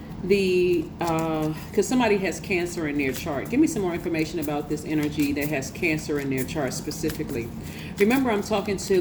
because somebody has Cancer in their chart. Give me some more information about this energy that has Cancer in their chart specifically. Remember, I'm talking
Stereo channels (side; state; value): both; identical; correlation 1.00